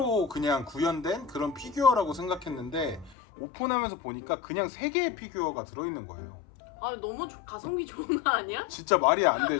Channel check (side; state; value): right; drops out; at 3.2 s